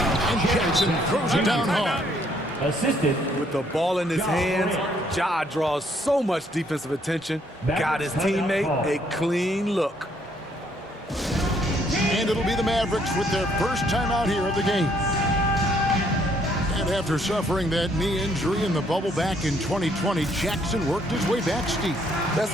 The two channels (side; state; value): both; normal; correlation 0.67